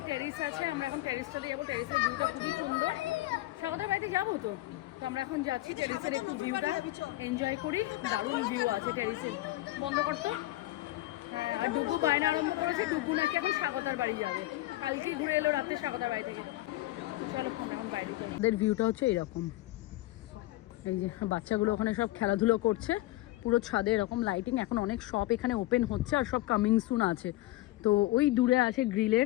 টেরিস আছে, আমরা এখন টেরিসটাতে যাবো। টেরিসের ভিউটা খুবই সুন্দর। স্বাগতার বাড়িতে যাবো তো, তো আমরা এখন যাচ্ছি টেরিসের একটু ভিউটা এনজয় করি। দারুণ ভিউ আছে টেরিসের। বন্ধ করতো। হ্যাঁ, আর ডুগু বায়না আরম্ভ করেছে, ডুগু নাকি এখন স্বাগতার বাড়ি যাবে। কালকে ঘুরে এলো রাতে স্বাগতার বাড়ি থেকে। চলো আমরা এখন বাইরে যাই। ওদের ভিউটা হচ্ছে এরকম, এই যে বাচ্চাগুলো ওখানে সব খেলাধুলো করছে, পুরো ছাদে এরকম লাইটিং। এখন অনেক শপ এখানে ওপেন হচ্ছে আর সব কামিং সুন আছে। তো ওই দূরে আছে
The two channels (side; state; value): right; quieter; 17.6 dB